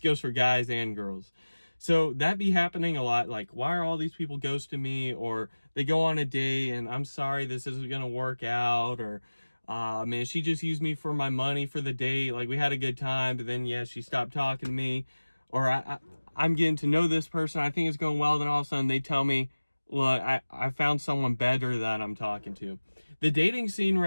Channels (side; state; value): both; inverted; correlation -1.00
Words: for guys and girls. So that be happening a lot. Like, why are all these people ghosting me? Or they go on a date and I'm sorry, this isn't going to work out. Or, man, she just used me for my money for the date. Like, we had a good time, but then, yeah, she stopped talking to me. Or I'm getting to know this person. I think it's going well. Then all of a sudden they tell me, look, I found someone better that I'm talking to. The dating scene